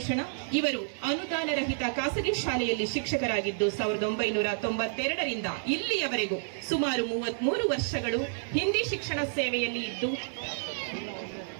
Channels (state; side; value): silent; left; digital silence